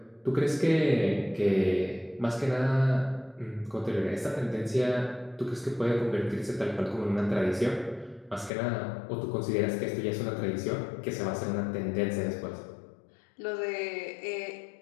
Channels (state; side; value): drops out; right; at 8.5 s